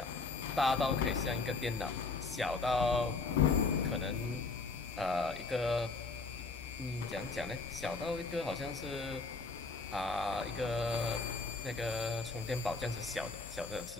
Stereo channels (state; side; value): quieter; right; 3.9 dB